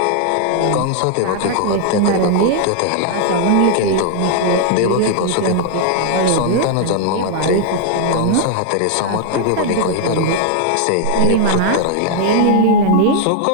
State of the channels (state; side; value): different; both; correlation -0.01